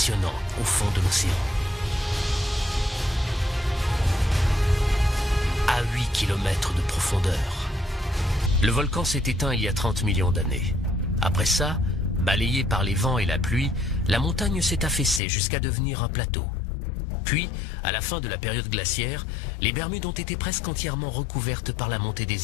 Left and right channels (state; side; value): drops out; right; at 15.2 s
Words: au fond de l'océan. À 8 km de profondeur. Le volcan s'est éteint il y a 30 millions d'années. Après ça, balayé par les vents et la pluie, la montagne s'est affaissée jusqu'à devenir un plateau. Puis, à la fin de la période glaciaire, les Bermudes ont été presque entièrement recouvertes par la montée